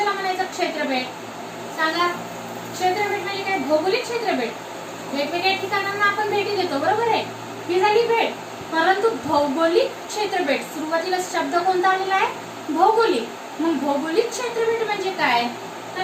म्हणायचं क्षेत्रफळ? सांगा. क्षेत्रफळ म्हणजे काय? भौगोलिक क्षेत्रफळ. वेगवेगळ्या ठिकाणांना आपण भेटी देतो, बरोबर आहे, ही झाली भेट. परंतु भौगोलिक क्षेत्रफळ, सुरुवातीला शब्द कोणता आलेला आहे? भौगोलिक. मग भौगोलिक क्षेत्रफळ म्हणजे काय?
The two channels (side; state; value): both; identical; correlation 1.00